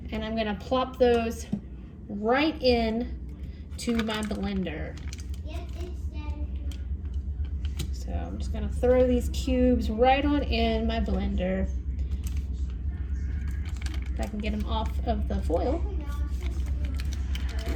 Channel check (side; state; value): both; identical; correlation 1.00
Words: And I'm gonna plop those right in to my blender. So I'm just gonna throw these cubes right on in my blender. If I can get them off of the foil.